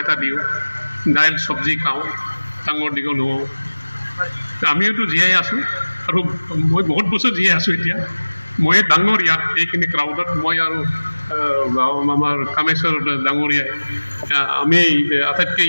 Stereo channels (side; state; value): both; inverted; correlation -1.00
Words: এটা দিওঁ, দাইল চব্জি খাওঁ, ডাঙৰ দীঘল হওঁ। আমিওতো জীয়াই আছোঁ, আৰু মই বহুত বছৰ জীয়াই আছোঁ এতিয়া। মই ডাঙৰ ইয়াত এইখিনি ক্ৰাউডত, মই আৰু আমাৰ কামেশ্বৰ ডাঙৰীয়াই আমি